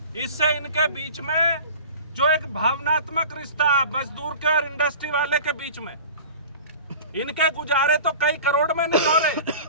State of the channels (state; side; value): inverted; both; correlation -0.39